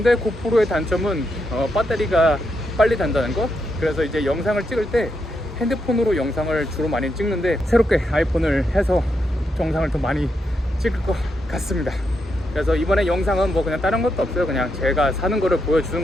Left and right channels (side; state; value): both; normal; correlation 0.82